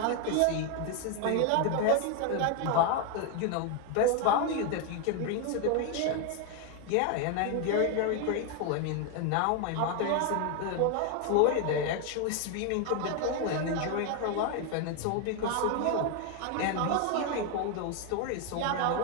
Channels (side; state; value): both; different; correlation 0.01